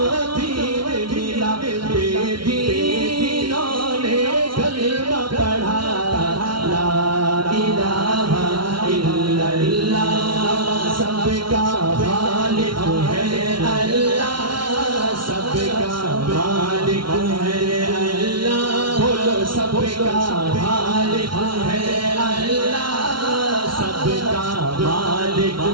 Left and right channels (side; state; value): left; late; 0.74 ms